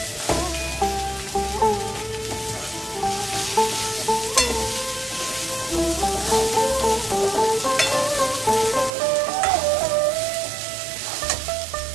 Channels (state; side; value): drops out; left; at 8.9 s